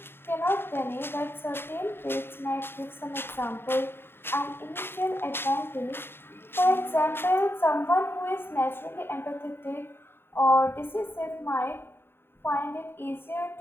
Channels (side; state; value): right; late; 0.11 ms